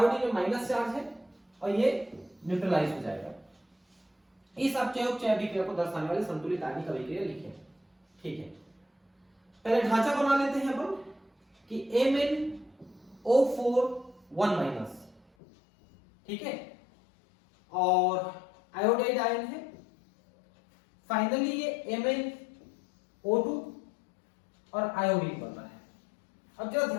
में माइनस चार्ज है और ये न्यूट्रलाइज हो जाएगा। इस अपचय अभिक्रिया को दर्शाने वाली संतुलित आयनिक अभिक्रिया लिखें। ठीक है, पहले ढांचा बना लेते हैं अपन कि MnO4 1-, ठीक है, और आयोडाइड आयन है। फाइनली ये MnO2 और आयोडीन बन रहा है। अब जरा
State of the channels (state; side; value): drops out; right; at 15.2 s